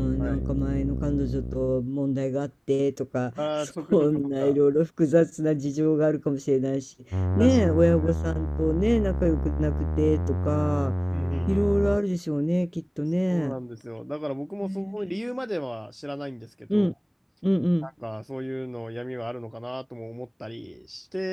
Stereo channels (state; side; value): identical; both; correlation 1.00